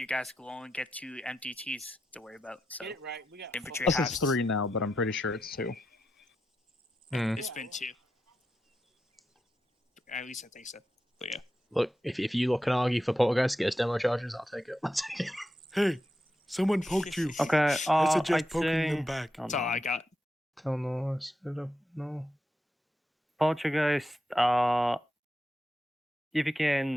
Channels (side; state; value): both; normal; correlation 0.87